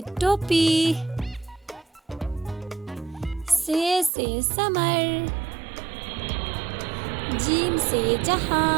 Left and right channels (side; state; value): left; drops out; at 4.1 s